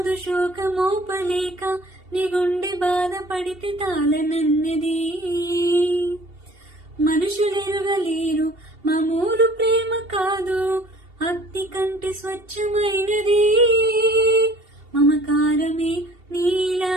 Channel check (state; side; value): late; left; 2.7 ms